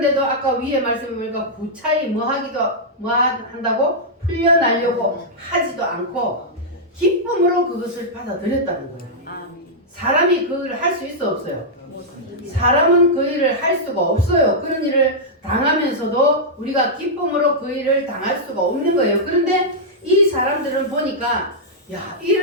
아까 위에 말씀해 보니까 구차히 뭐 한다고 풀려나려고 하지도 않고 기쁨으로 그것을 받아들였다는 거예요. 사람이 그 일을 할 수 있어 없어요? 사람은 그 일을 할 수가 없어요. 그런 일을 당하면서도 우리가 기쁨으로 그 일을 당할 수가 없는 거예요. 그런데 이 사람들은 보니까 야,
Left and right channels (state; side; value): normal; both; correlation -0.08